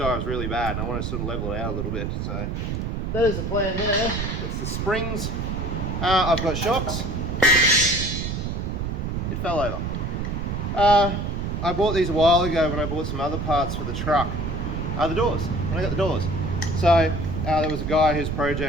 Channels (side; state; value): right; noise; rumble, 2 dB below the sound